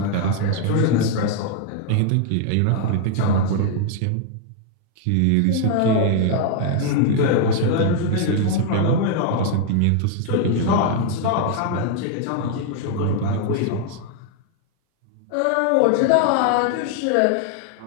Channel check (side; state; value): both; different; correlation 0.00